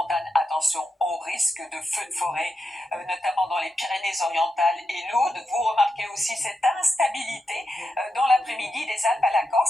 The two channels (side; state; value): both; normal; correlation 0.87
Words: Attention au risque de feux de forêt, notamment dans les Pyrénées-Orientales et l'Aude. Vous remarquez aussi cette instabilité dans l'après-midi des Alpes à la